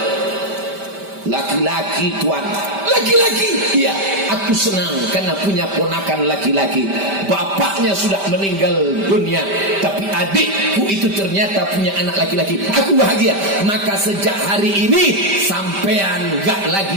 Laki-laki Tuan. Laki-laki. Iya, aku senang karena punya ponakan laki-laki. Bapaknya sudah meninggal dunia, tapi adikku itu ternyata punya anak laki-laki. Aku bahagia. Maka sejak hari ini sampean gak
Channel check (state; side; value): late; left; 5.1 ms